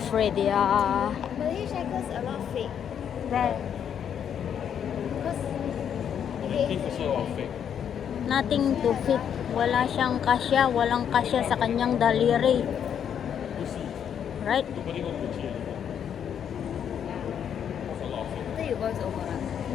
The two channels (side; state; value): right; quieter; 8.6 dB